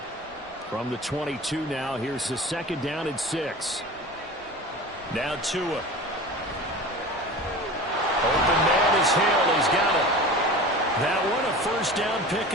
From the 22 now, here's the second down and 6. Now Tua. Open man is Hill. He's got it. That one a first down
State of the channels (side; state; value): both; normal; correlation 0.35